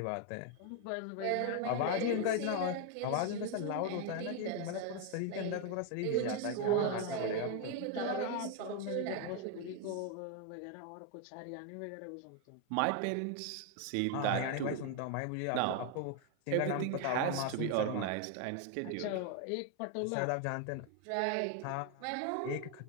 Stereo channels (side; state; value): both; different; correlation 0.01